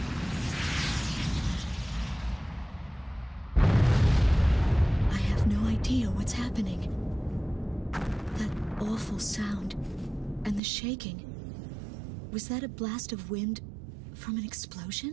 I have no idea what's happening. That awful sound and the shaking. Was that a blast of wind from an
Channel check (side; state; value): left; drops out; at 10.6 s